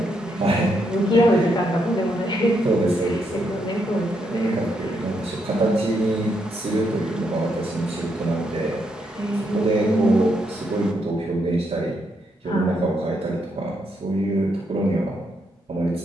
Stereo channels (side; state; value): both; normal; correlation 0.78